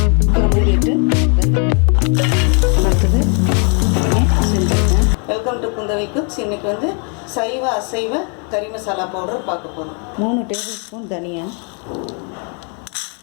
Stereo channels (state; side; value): quieter; right; 38.6 dB